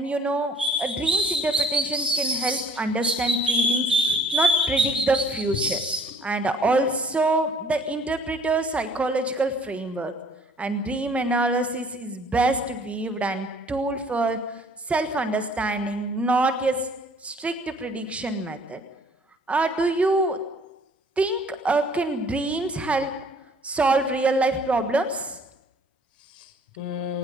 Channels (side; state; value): both; normal; correlation 0.56